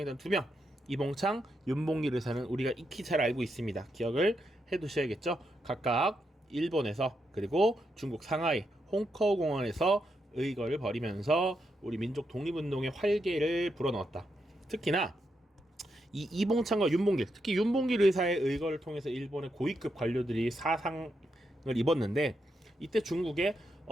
2명 이봉창, 윤봉길 의사는 우리가 익히 잘 알고 있습니다. 기억을 해두셔야겠죠. 각각 일본에서 그리고 중국 상하이 홍커우 공원에서 의거를 벌이면서 우리 민족 독립운동의 활개를 불어넣었다. 특히나 이 이봉창과 윤봉길, 특히 윤봉길 의사의 의거를 통해서 일본의 고위급 관료들이 사상을 입었는데 이때 중국에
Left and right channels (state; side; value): normal; both; correlation 0.82